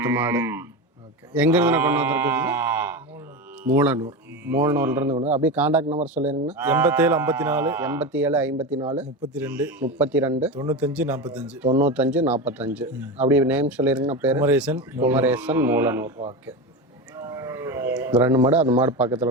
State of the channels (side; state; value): both; normal; correlation 0.21